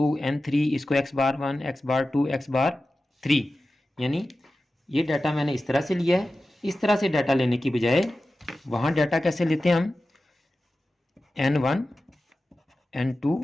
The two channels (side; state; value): both; normal; correlation 0.94